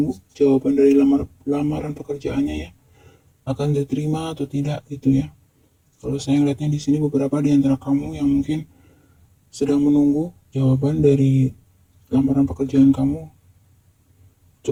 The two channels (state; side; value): identical; both; correlation 1.00